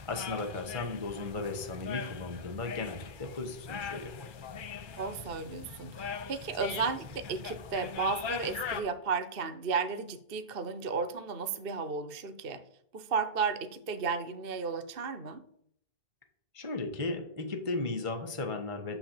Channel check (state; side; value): late; left; 2.6 ms